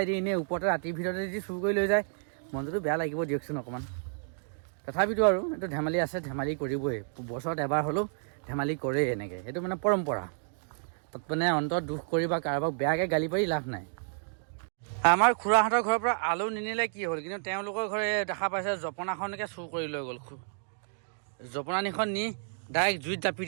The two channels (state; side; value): silent; left; digital silence